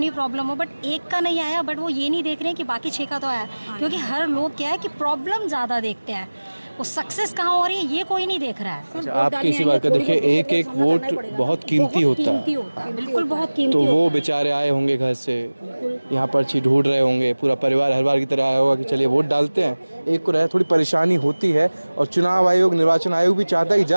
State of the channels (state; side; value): inverted; both; correlation -1.00